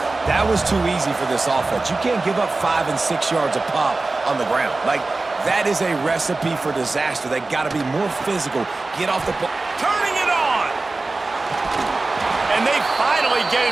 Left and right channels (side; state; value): left; quieter; 3.4 dB